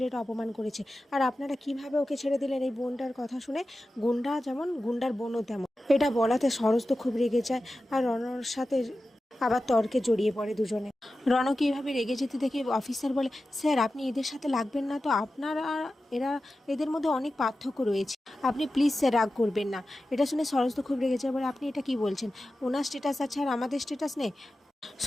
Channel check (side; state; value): both; normal; correlation 0.93